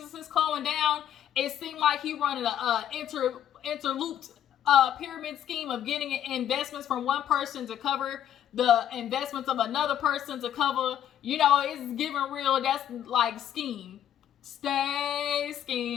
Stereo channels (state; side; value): quieter; right; 10.4 dB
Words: going down. It seemed like he running a interlooped pyramid scheme of getting investments from one person to cover the investments of another person to cover. You know, it's giving real. That's like scheme. Stay